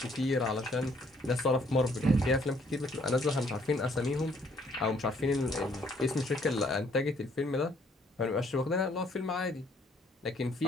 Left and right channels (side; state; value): both; normal; correlation 0.65